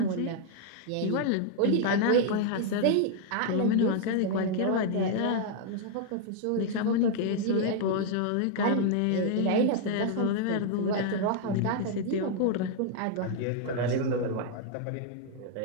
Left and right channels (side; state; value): both; different; correlation 0.00